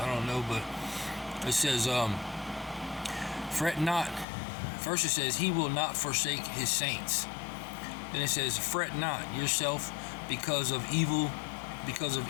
don't know, but it says, fret not. First it says, he will not forsake his saints. Then it says, fret not yourself because of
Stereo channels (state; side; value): drops out; right; at 4.2 s